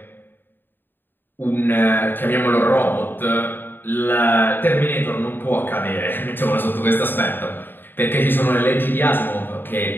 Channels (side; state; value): right; late; 0.095 ms